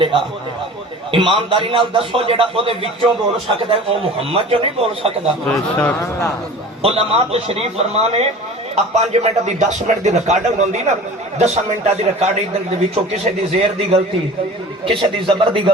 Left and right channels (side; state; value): both; normal; correlation 0.40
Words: ایمانداری نال دسو جڑا او دے وچوں بول سکدا ہے او محمد جو نہیں بول سکدا بے شک علماء تشریف فرمانے اب 5 منٹ دی 10 منٹ دی ریکارڈنگ ہوندی نا 10 منٹاں دی ریکارڈنگ دے وچوں کسے دی زیر دی غلطی کسے دی زبر دی